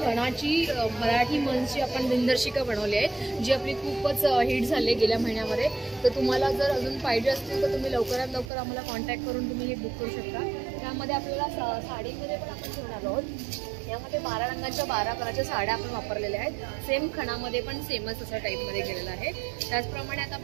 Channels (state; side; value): drops out; left; at 8.5 s